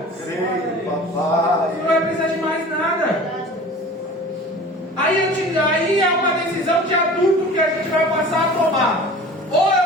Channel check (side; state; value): both; normal; correlation 0.41